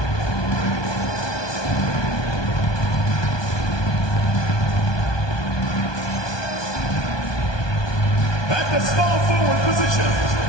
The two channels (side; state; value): right; late; 1.2 ms